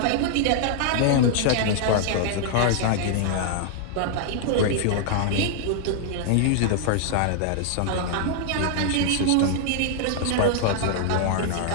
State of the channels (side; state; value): both; different; correlation -0.01